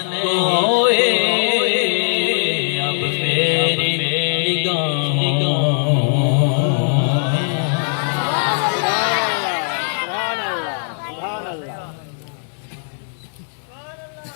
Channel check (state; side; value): silent; right; 65 dB below the other